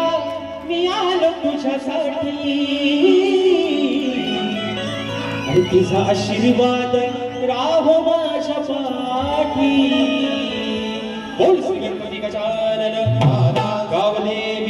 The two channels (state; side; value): identical; both; correlation 1.00